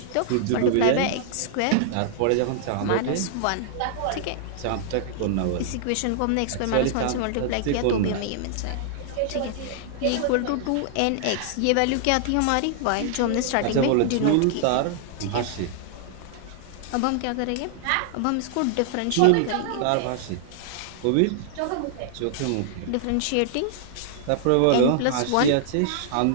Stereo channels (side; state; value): both; different; correlation -0.01